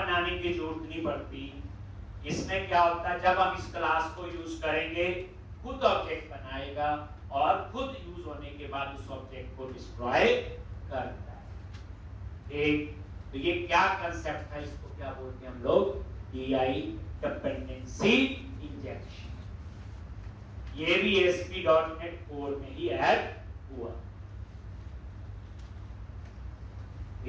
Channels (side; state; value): both; identical; correlation 1.00